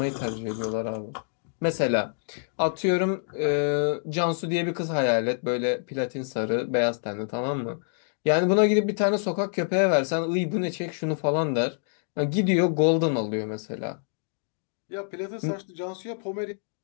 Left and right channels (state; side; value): silent; right; digital silence